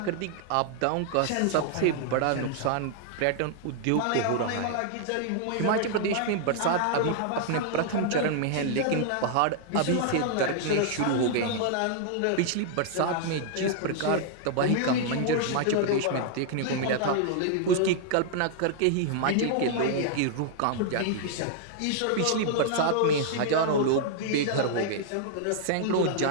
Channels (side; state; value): both; different; correlation -0.01